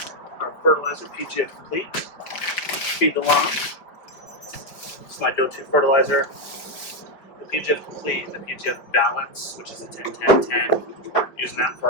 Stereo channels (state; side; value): late; right; 5.0 ms